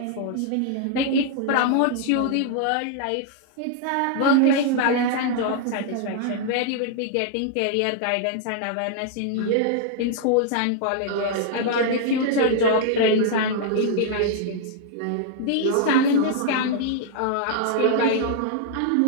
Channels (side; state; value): both; different; correlation -0.01